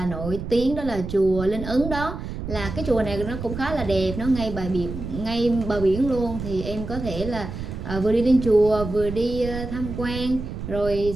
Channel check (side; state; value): right; noise; rumble, 7 dB below the sound